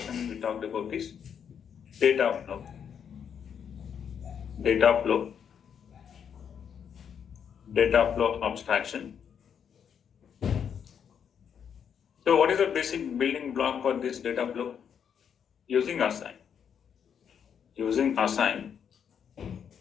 we talked about is data flow. Data flow abstraction. So what is the basic building block for this data flow? Using assign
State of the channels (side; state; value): right; quieter; 7.8 dB